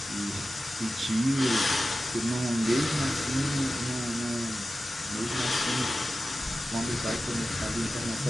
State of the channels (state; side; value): normal; both; correlation 0.94